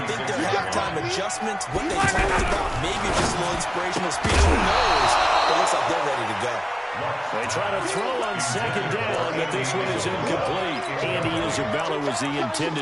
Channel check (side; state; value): both; identical; correlation 1.00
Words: think their halftime adjustments, what they talked about, maybe just a little inspirational speech, who knows? It looks like they're ready to go. They try to throw on 2nd down, but this one is incomplete. Andy Isabella was the